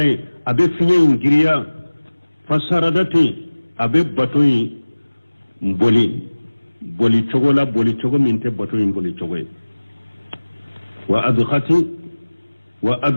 abe finye ngiriya fasaradati abe bato mboli boli chogo minte bato boli chogo wa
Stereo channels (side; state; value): both; inverted; correlation -1.00